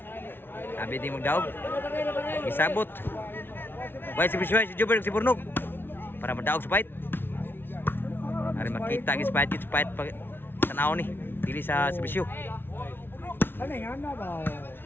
Sabi di magdaog. Isabot. Way si Jubber si Burnog para madaog sa fight. Ari makita gis fight pag tanaw ni dili sa serbisyo.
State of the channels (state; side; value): late; right; 0.11 ms